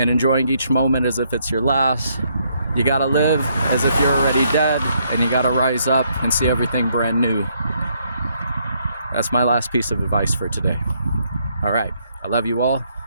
enjoying each moment as if it's your last. You gotta live as if you're already dead, and you gotta rise up and see everything brand new. That's my last piece of advice for today. All right, I love you all.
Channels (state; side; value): inverted; both; correlation -0.72